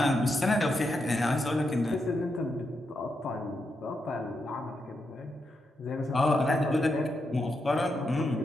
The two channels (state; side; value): normal; both; correlation 0.84